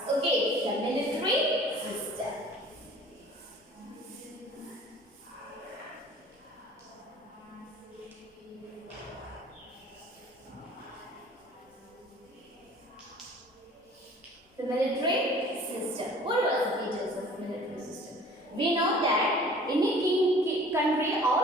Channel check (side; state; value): both; normal; correlation 0.48